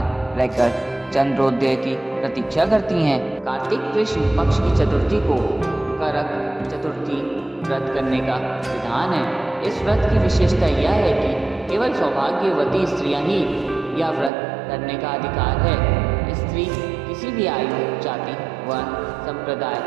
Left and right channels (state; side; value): drops out; left; at 14.3 s